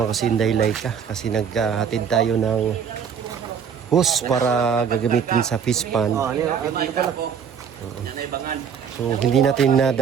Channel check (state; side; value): quieter; left; 7.3 dB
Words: ko si Inday Laika kasi naghatid tayo ng hose para gagamitin sa fish pond. So hindi natin